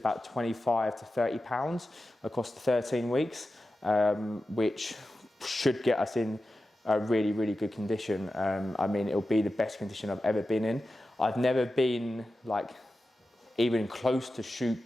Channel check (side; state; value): both; normal; correlation 0.93